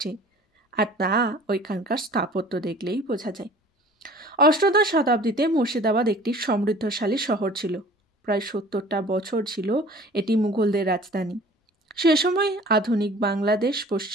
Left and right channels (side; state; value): both; normal; correlation 0.47